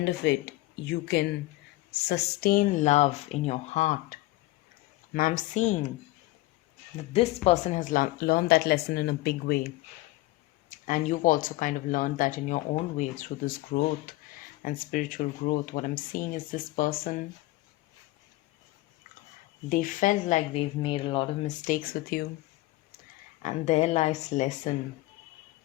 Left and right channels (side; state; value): right; quieter; 18.9 dB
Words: of it you can sustain love in your heart. And I'm seeing that this person has learned that lesson in a big way, and you've also kind of learned that in your own way through this growth and spiritual growth. What I'm seeing is this person, they felt like they've made a lot of mistakes with you, and their life's lesson